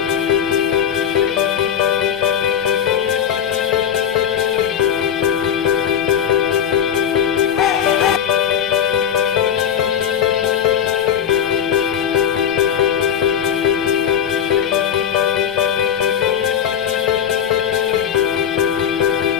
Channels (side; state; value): right; quieter; 8.9 dB